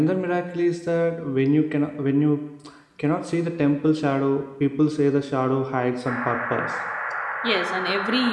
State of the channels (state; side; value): identical; both; correlation 1.00